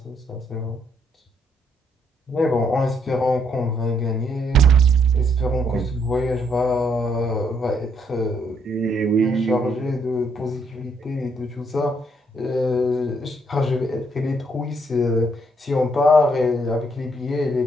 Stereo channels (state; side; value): normal; both; correlation 0.71